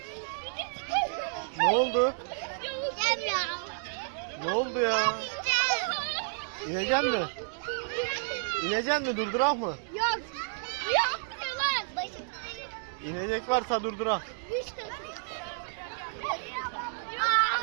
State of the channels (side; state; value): left; silent; digital silence